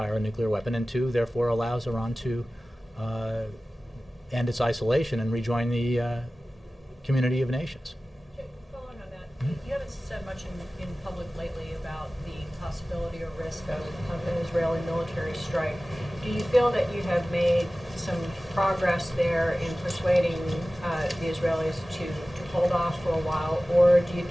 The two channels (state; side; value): normal; both; correlation 0.97